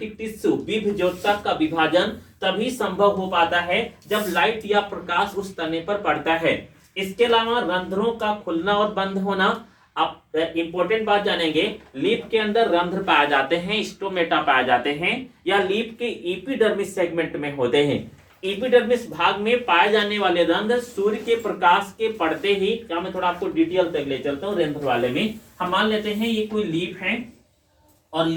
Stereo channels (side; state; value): both; identical; correlation 1.00